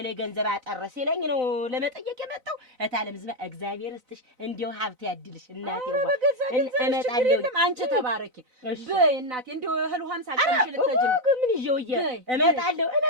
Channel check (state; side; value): late; left; 4.0 ms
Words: ላይ ገንዘብ አጠረ ሲለኝ ነው ለመጠየቅ የመጣው። እታለም ዝማ እግዚአብሔር ይስጥሽ እንደው ሀብት ያድልሽ እናቴ። በገዛ ገንዘብ ችግር የለም። አንቺ ተባረኪ በይ እናቴ። እንደው እህል ውሃም ሳትቀምሽ ልትሄጂ ነው። ምን ይዤው እመጣለሁ